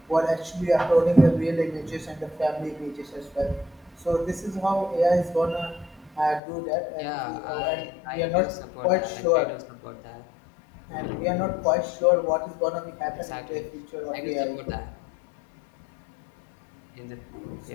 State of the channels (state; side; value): drops out; right; at 6.4 s